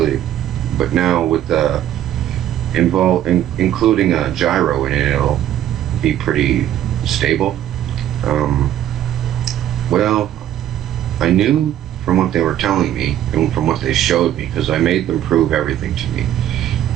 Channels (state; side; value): quieter; left; 11.7 dB